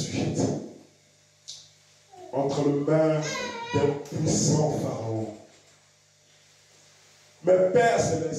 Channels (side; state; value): both; identical; correlation 1.00